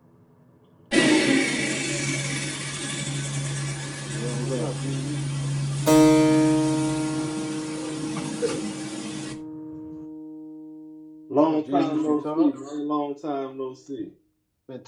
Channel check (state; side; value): identical; both; correlation 1.00